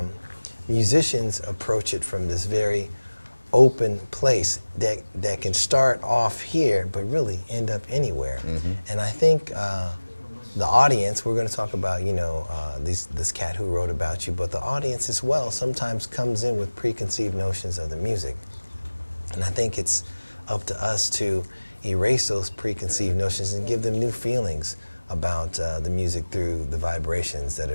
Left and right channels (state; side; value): inverted; both; correlation -1.00